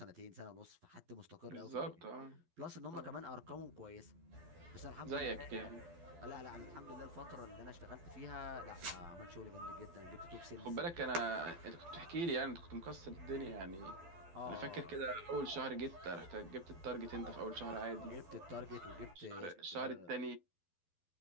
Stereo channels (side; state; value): left; late; 12 ms